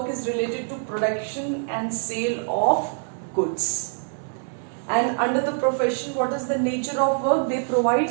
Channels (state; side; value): silent; left; 62 dB below the other